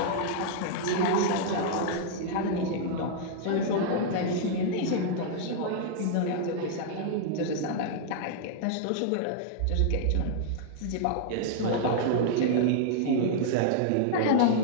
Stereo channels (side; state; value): both; different; correlation -0.01